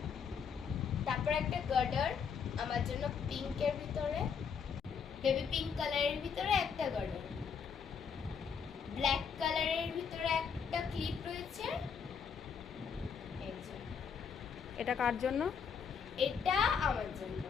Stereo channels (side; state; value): right; quieter; 6.6 dB